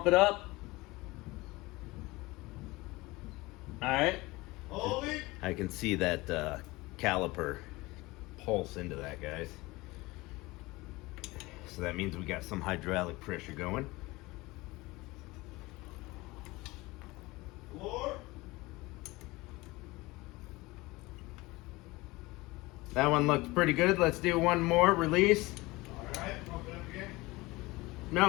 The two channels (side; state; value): right; quieter; 21.5 dB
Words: it up. All right. Holding. I can see that caliper pulse into that, guys. So that means we got some hydraulic pressure going. Floor. That one looks pretty good. Let's do one more. Release. All right. Pump it up again.